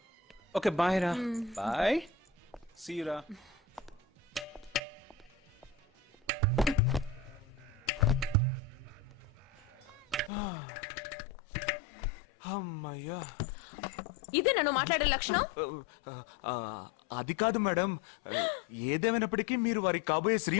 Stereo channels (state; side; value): drops out; right; at 10.3 s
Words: Okay, bye రా. Bye. See you రా. అమ్మయ్యా. ఇదే నన్ను మాట్లాడే లక్షణం? అది కాదు మేడం, ఏదేమైనప్పటికీ మీరు వారి కాబోయే